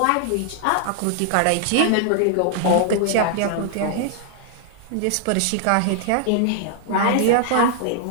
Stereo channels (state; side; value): different; both; correlation -0.01